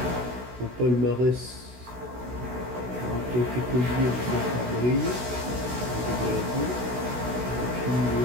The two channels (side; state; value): left; late; 16 ms